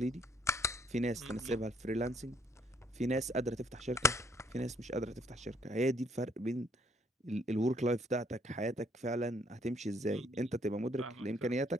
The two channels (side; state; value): both; normal; correlation 0.66